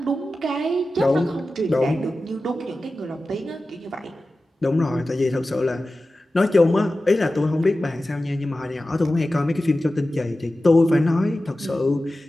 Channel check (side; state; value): both; normal; correlation 0.95